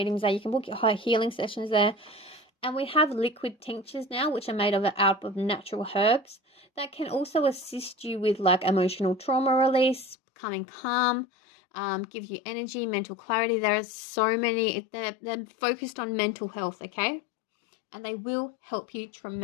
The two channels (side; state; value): right; drops out; at 10.2 s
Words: there, you can book your high healing sessions there. And we have liquid tinctures now, which are made out of natural herbs that can also assist you with like emotional trauma release, becoming calm, give you energy, mental clarity. There are so many, they're focused on mental health, okay? And they will help you